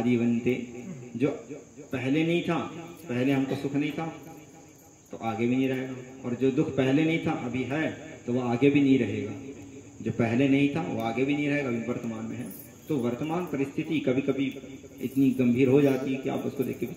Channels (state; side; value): identical; both; correlation 1.00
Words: जो पहले नहीं था, पहले हमको सुख नहीं था तो आगे भी नहीं रहेगा, और जो दुख पहले नहीं था अभी है तो वो आगे भी नहीं रहेगा। जो पहले नहीं था वो आगे भी नहीं रहेगा, अभी वर्तमान में है। तो वर्तमान परिस्थिति कभी कभी इतनी गंभीर हो जाती है कि आप उसको देख के